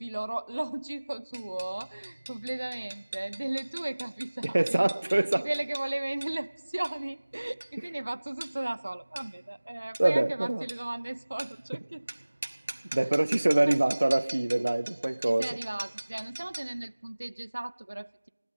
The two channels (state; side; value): inverted; both; correlation -1.00